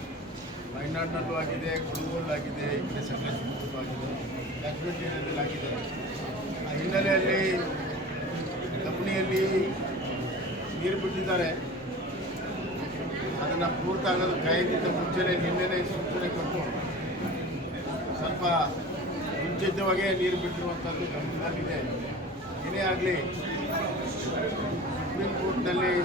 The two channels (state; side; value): normal; both; correlation 0.37